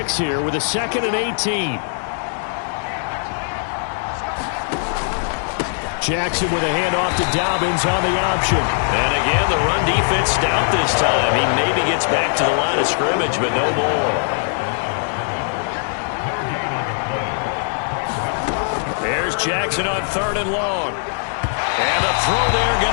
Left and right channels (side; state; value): right; silent; digital silence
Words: here with a 2nd and 18. Jackson with a handoff to Dobbins on the option. And again, the run defense stout this time. He maybe gets back to the line of scrimmage, but no more. There's Jackson on 3rd and long. And the throw there